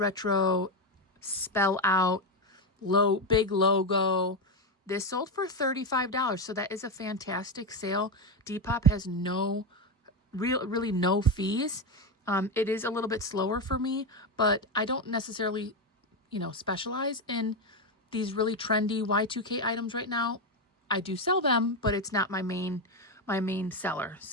spell out, big logo. This sold for $35, so that is a fantastic sale. Depop has really no fees. It is a little bit slower for me, but I don't necessarily, specialize in these really trendy Y2K items right now. I do sell them, but it's not my main seller.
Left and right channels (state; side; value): normal; both; correlation 0.10